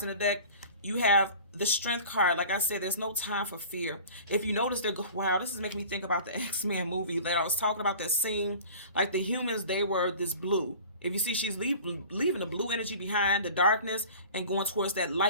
in the deck, you have the Strength card. Like I said, there's no time for fear. If you notice, wow, this is making me think about the X-Men movie that I was talking about, that scene. Like the humans, they were this blue. If you see, she's leaving the blue energy behind, the darkness, and going towards that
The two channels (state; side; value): inverted; both; correlation -0.42